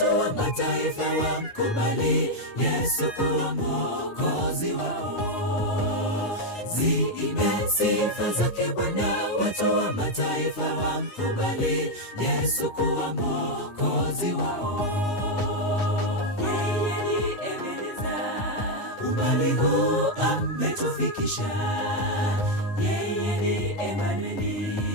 wa mataifa wamkubali Yesu kuwa Mwokozi wao. Ziimbe sifa zake Bwana, watu wa mataifa wamkubali Yesu kuwa Mwokozi wao. umbali huu ametufikisha. Yeye ni Emanueli,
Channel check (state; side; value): late; right; 9.6 ms